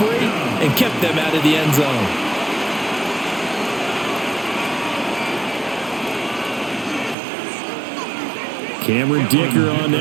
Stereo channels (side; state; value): left; drops out; at 7.2 s